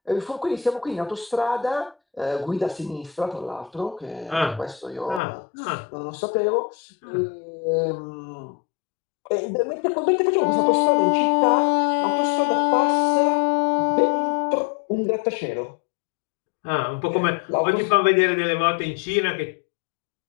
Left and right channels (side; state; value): right; drops out; at 5.2 s